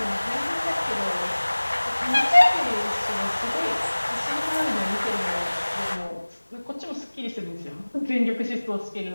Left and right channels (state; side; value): inverted; both; correlation -1.00